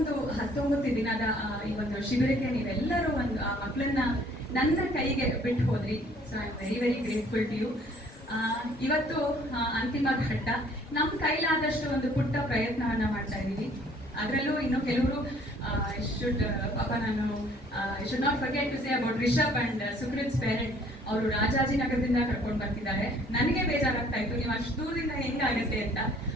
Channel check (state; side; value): normal; both; correlation 0.58